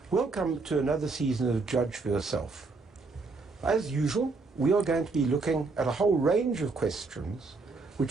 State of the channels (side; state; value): left; quieter; 3.9 dB